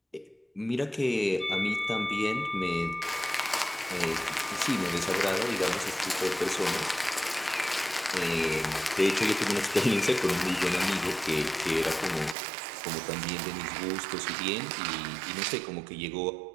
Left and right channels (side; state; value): left; drops out; at 12.4 s